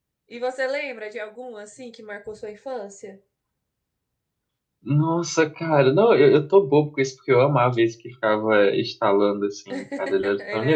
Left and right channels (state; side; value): identical; both; correlation 1.00